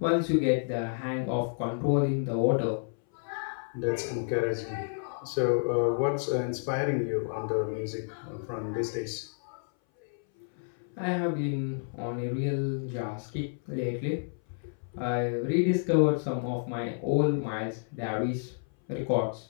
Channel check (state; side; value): silent; right; 58 dB below the other